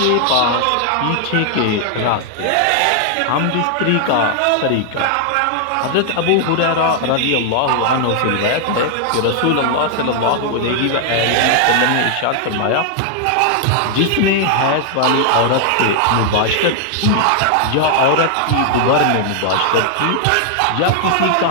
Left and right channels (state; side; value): different; both; correlation 0.00